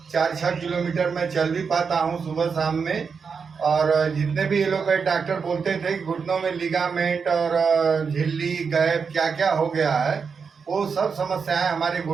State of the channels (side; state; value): left; quieter; 5.7 dB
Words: 4-6 किलोमीटर मैं चल भी पाता हूँ सुबह शाम में। और जितने भी एलोपैथ डॉक्टर बोलते थे कि घुटनों में लिगामेंट और झिल्ली गैप क्या क्या हो गया है, वो सब समस्याएं हमारे